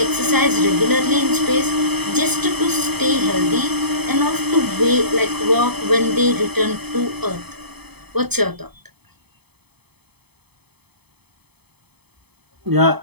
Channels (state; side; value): late; left; 0.98 ms